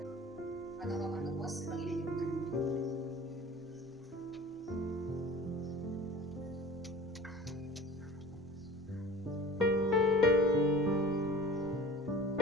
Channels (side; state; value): both; normal; correlation 0.41